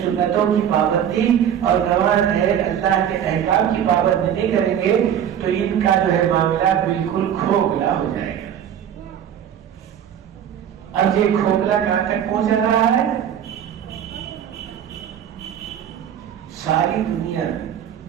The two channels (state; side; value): quieter; left; 9.4 dB